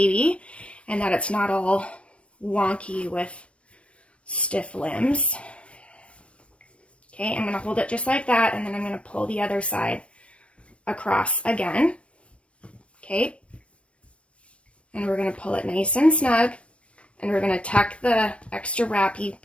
and that it's not all wonky with stiff limbs. Okay, I'm going to hold it just like that, and then I'm going to pull the other side across again. Okay. And we're going to pull it nice and snug, and we're going to tuck the extra wrappy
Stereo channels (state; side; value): late; right; 0.061 ms